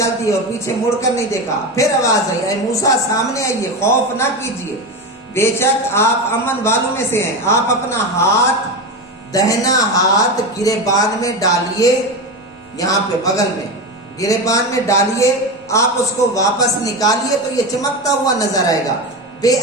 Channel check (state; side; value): normal; both; correlation 0.20